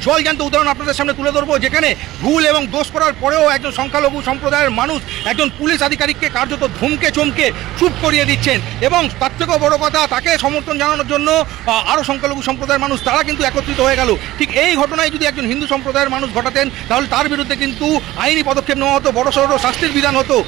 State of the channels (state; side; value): quieter; left; 16.6 dB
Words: জলজ্যান্ত উদাহরণ আপনাদের সামনে তুলে ধরবো, যেখানে ভুল এবং দোষ করার পরেও একজন সংখ্যালঘু সম্প্রদায়ের মানুষ একজন পুলিশ আধিকারিককে কার্যত ধমকে চমকে চুপ করিয়ে দিচ্ছেন। এবং তার থেকেও বড় কথা, তাকে সমর্থন জানানোর জন্য আরও সংখ্যালঘু সম্প্রদায়ের মানুষ তারা কিন্তু একত্রিত হয়ে গেল। ঠিক এই ঘটনায় যদি একজন হিন্দু সম্প্রদায়ের মানুষ ঘটাতেন তাহলে তার বিরুদ্ধে কিন্তু আইনি পদক্ষেপ নেওয়া হতো, বড়সড় শাস্তির বিধান হতো।